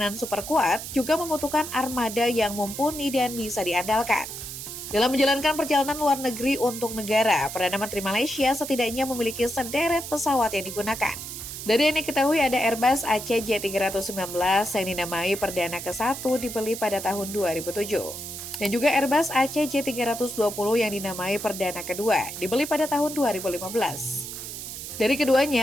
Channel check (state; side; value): noise; right; hiss, 9 dB below the sound